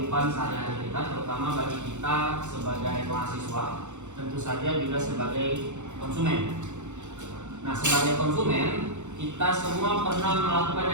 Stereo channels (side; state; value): left; late; 0.84 ms